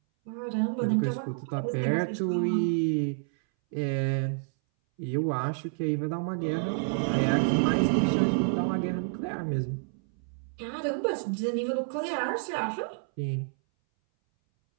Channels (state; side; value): silent; left; 59 dB below the other